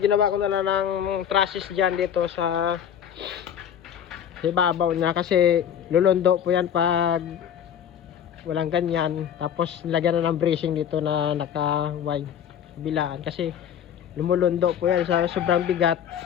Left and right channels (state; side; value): quieter; right; 9.1 dB